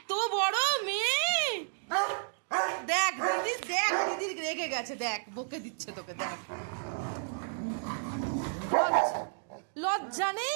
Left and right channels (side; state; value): left; silent; digital silence